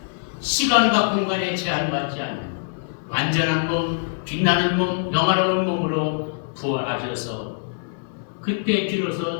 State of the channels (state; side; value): silent; right; 58 dB below the other